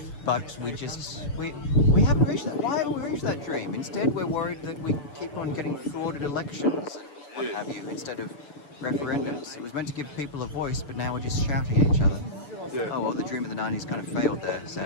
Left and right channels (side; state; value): right; late; 6.9 ms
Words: But we haven't reached that. Why haven't we reached that dream? Instead, we're worried that we keep on getting frauded elections and what have you, instead of referendums. It was meant to give people a voice, but now we're just shouting at each other. Yeah. Oh well, the dream of the 90s kind of failed there,